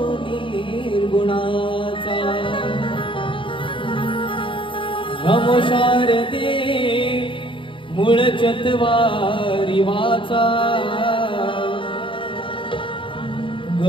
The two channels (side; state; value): right; late; 0.25 ms